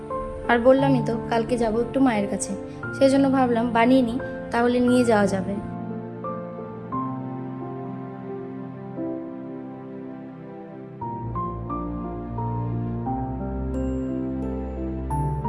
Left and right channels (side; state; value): both; identical; correlation 1.00